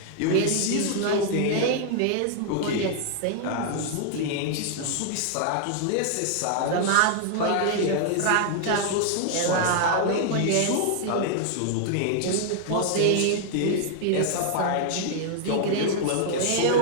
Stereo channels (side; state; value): both; different; correlation -0.01